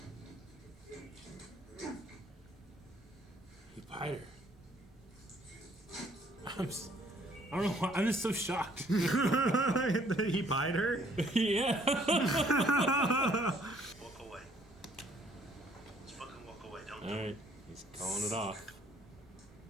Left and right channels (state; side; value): normal; both; correlation 0.62